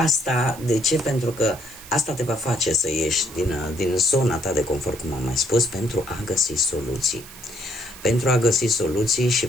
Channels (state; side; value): noise; right; hiss, 17 dB below the sound